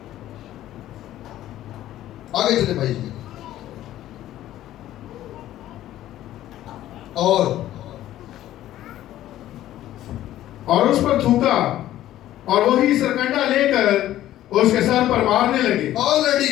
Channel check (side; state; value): right; quieter; 13.5 dB